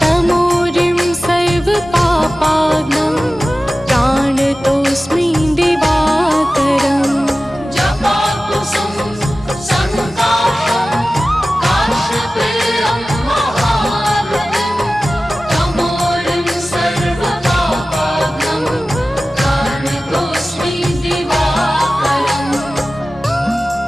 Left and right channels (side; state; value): both; normal; correlation 0.96